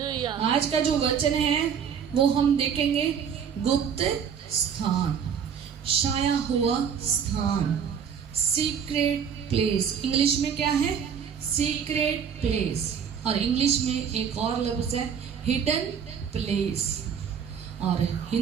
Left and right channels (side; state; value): left; quieter; 7.4 dB